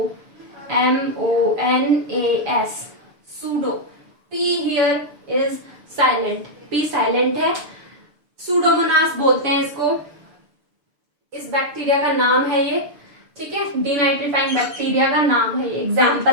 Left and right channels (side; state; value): left; late; 6.8 ms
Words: pseudo. P here is silent, P silent है, सूडोमोनास बोलते हैं इसको, इस बैक्टीरिया का नाम है ये, ठीक है, डीनाइट्रीफाइंग बैक्टीरिया का नाम है ये,